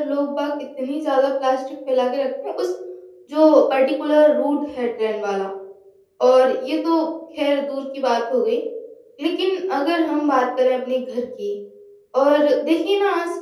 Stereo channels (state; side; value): identical; both; correlation 1.00